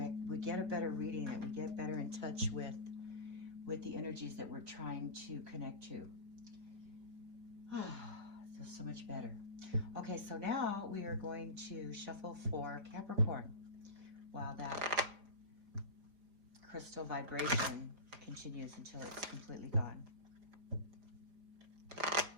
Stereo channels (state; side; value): late; left; 4.8 ms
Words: we get a better reading and we get better in touch with the energies that we're trying to connect to. Feels so much better. Okay, so now we are going to shuffle for Capricorn while that crystal vibration continues until it's completely gone.